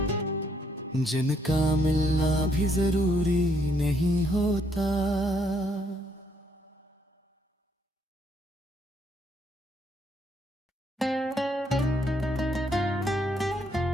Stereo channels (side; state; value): both; normal; correlation 0.71